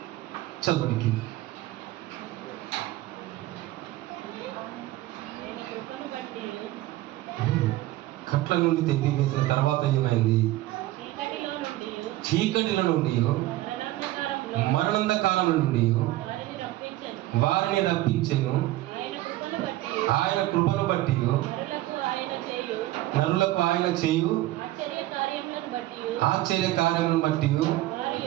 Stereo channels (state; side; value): quieter; left; 16.5 dB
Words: చదవడానికి కట్ల నుండి తెప్పి వేసిన తర్వాత ఏమైంది? చీకటిల నుండి మరణంధకారముల నుండి వారిని రప్పించెను. ఆయన కృపను బట్టి నరులకు ఆయన చేయు ఆశ్చర్య కార్యములను బట్టి